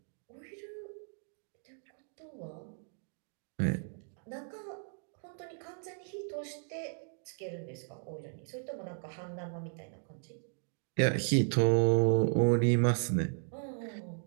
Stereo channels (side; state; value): left; silent; 54 dB below the other